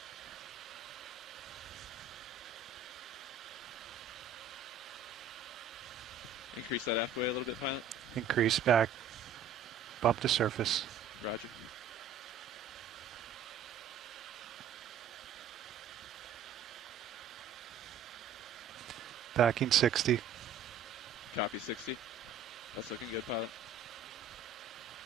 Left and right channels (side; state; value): left; quieter; 5.9 dB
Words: Increase that aft way a little bit, pilot. Increase back. Bump to surface. Roger. Backing 60. Copy 60. That's looking good, pilot.